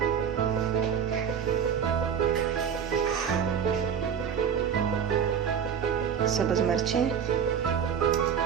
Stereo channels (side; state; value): left; quieter; 7.7 dB